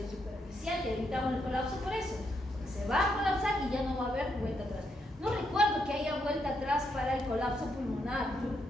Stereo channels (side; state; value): both; normal; correlation 0.79